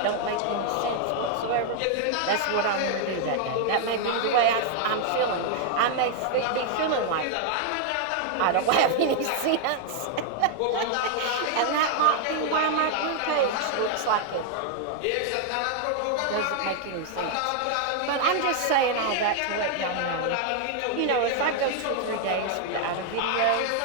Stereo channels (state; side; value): different; both; correlation 0.00